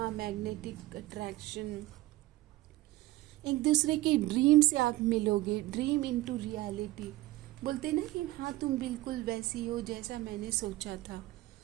मैग्नेटिक अट्रैक्शन, एक दूसरे के ड्रीम से आप मिलोगे, ड्रीम इनटू रियलिटी। बोलते ना कि हाँ तुम बिल्कुल वैसी हो जैसा मैंने सोचा था,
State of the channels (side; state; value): left; quieter; 18.1 dB